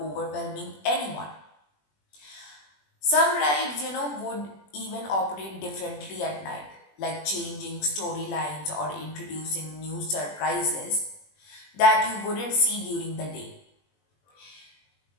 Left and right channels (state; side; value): late; right; 20 ms